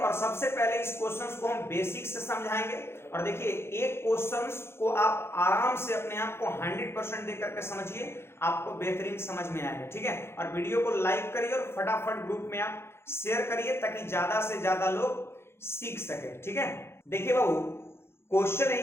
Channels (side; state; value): right; late; 0.12 ms